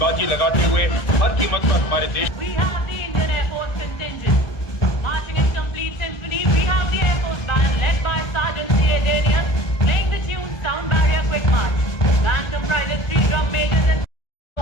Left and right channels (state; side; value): late; right; 1.4 ms